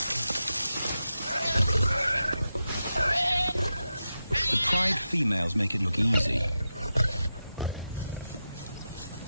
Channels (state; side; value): inverted; both; correlation -0.90